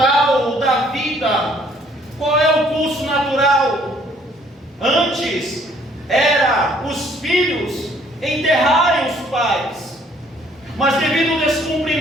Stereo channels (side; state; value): both; normal; correlation 0.62